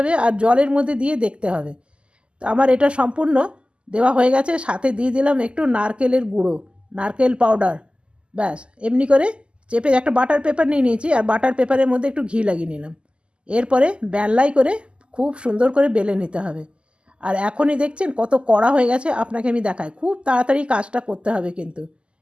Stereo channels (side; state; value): left; late; 0.052 ms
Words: আর জলের মধ্যে দিয়ে দেখতে হবে। তো আমার এটা সম্পূর্ণ দেওয়া হয়ে গেছে, সাথে দিয়ে দিলাম একটু নারকেলের গুঁড়ো, নারকেল পাউডার। ব্যাস এমনি করে চেপে একটা বাটার পেপার নিয়ে নিয়েছি আর বাটার পেপারের মধ্যে একটু ঘি লাগিয়ে নিলাম। এরপরে বেলাই করে খুব সুন্দর করে বেলে নিতে হবে। আর এখনই দেখছেন কত কড়া হয়ে গেছে, আপনাকে আমি দেখাই, খুব তাড়াতাড়ি কাজটা করতে হবে কিন্তু।